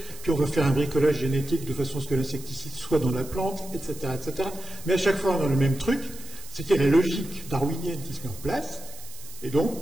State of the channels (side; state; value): right; noise; hiss, 16 dB below the sound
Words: puis on va faire un bricolage génétique de façon à ce que l'insecticide soit dans la plante, etc., etc. Mais à chaque fois, on a le même truc, c'est qu'il y a la logique darwinienne qui se met en place, et